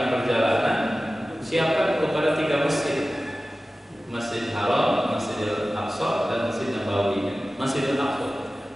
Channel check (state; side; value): normal; both; correlation 0.96